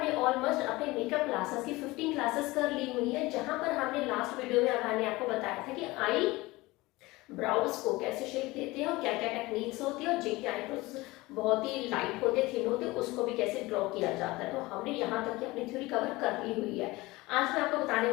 ऑलमोस्ट अपने मेकअप क्लासेस की 15 क्लासेस कर ली हुई है, जहां पर हमने लास्ट वीडियो में मैंने आपको बताया था कि आई ब्राउज को कैसे शेप देते हैं और क्या क्या टेक्निक्स होती है और जिनके आईब्रोज बहुत ही लाइट होते थिन होते उसको भी कैसे ड्रॉ किया जाता है। तो हमने यहाँ तक की अपनी थ्योरी कवर कर ली हुई है। आज मैं आपको बताने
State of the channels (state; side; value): quieter; right; 20.8 dB